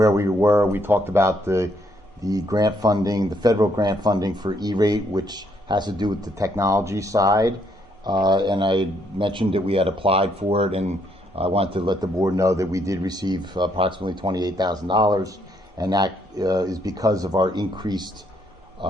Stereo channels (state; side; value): normal; both; correlation 0.71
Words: we were, we talked about the grant funding, the federal grant funding for E-rate, which has to do with the technology side. And I mentioned that we had applied for it, and I wanted to let the board know that we did receive approximately $28,000, and that is because of our increased